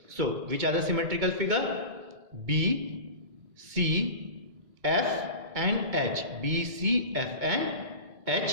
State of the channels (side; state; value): left; late; 2.2 ms